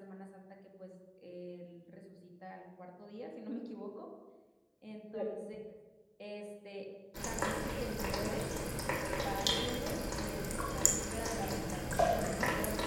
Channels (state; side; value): identical; both; correlation 1.00